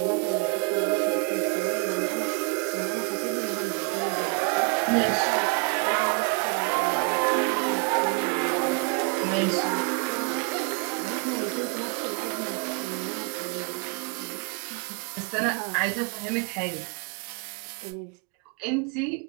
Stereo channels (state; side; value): quieter; left; 34.6 dB